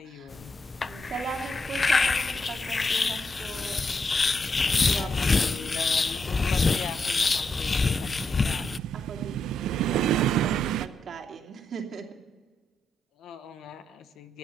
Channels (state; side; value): normal; both; correlation 0.81